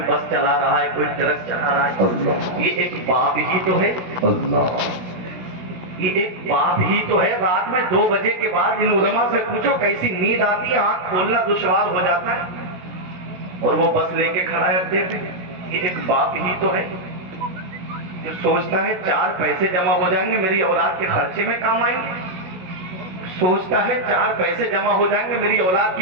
بس چلا رہا ہے، کوئی ٹرک چلا رہا ہے. یہ ایک باپ ہی تو ہے، یہ ایک باپ ہی تو ہے. رات میں 2 بجے کے بعد ان علماء سے پوچھو کیسی نیند آتی ہے، آنکھ کھولنا دشوار ہو جاتا ہے، اور وہ بس لے کے کھڑا ہے اڈے پہ. یہ ایک باپ ہی تو ہے جو سوچتا ہے 4 پیسے جمع ہو جائیں گے میری اولاد کے خرچے میں کام آئیں گے، سوچتا ہے 4 پیسے جمع ہو جائیں گے میری اولاد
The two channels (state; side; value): late; left; 16 ms